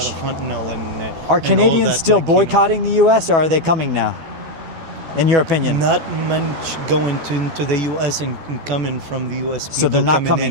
A lot of fentanyl and, are and all Canadians that, still like, you know. boycotting the U.S. or are they coming now? In your opinion? Not much going to the U.S. and coming from the U.S. So they're people not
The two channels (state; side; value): late; left; 12 ms